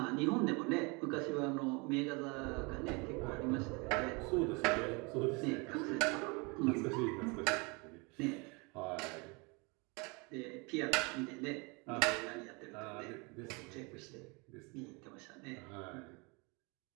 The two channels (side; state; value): left; quieter; 29.4 dB